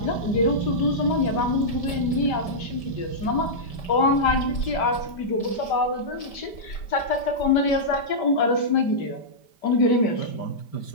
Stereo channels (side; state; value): right; late; 5.1 ms